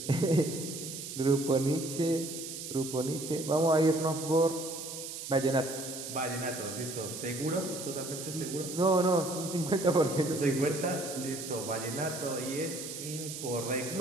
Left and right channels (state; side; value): noise; right; hiss, 8 dB below the sound